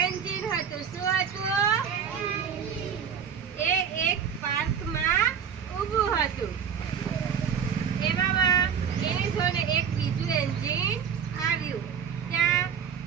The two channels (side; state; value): left; quieter; 7.5 dB